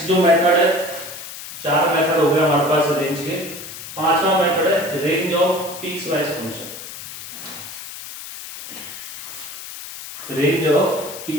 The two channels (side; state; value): left; noise; hiss, 11 dB below the sound